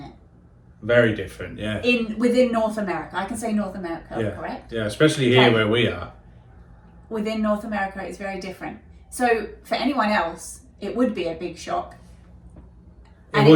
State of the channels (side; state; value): both; identical; correlation 1.00